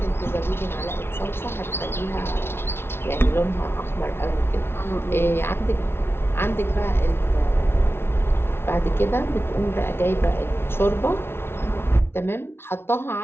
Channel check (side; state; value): right; late; 0.12 ms